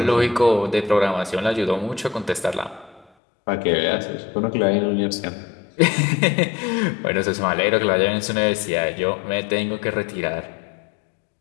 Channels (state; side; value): drops out; right; at 3.1 s